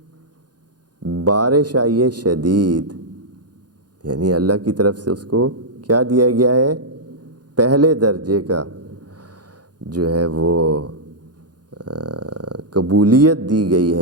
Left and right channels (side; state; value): left; late; 0.69 ms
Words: بارش آئی ہے شدید، یعنی اللہ کی طرف سے اس کو کیا دیا گیا ہے؟ پہلے درجے کا جو ہے وہ قبولیت دی گئی